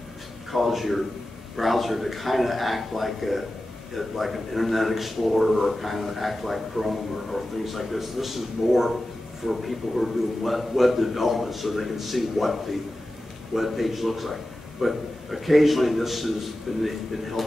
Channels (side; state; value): both; normal; correlation 0.94